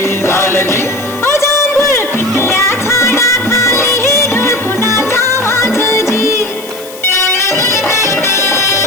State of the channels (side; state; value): left; noise; hiss, 17 dB below the sound